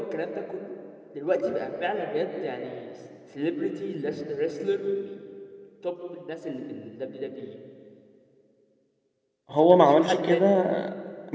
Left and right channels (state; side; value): identical; both; correlation 1.00